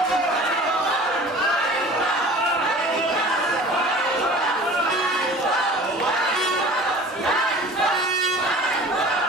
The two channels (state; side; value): normal; both; correlation 0.43